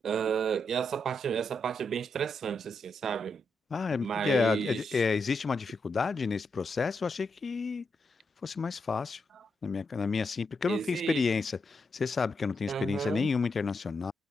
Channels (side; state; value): both; normal; correlation 0.83